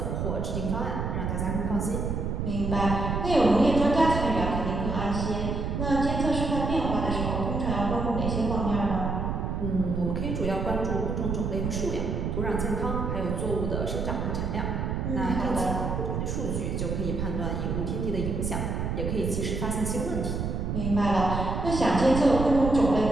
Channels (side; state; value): right; noise; rumble, 1 dB below the sound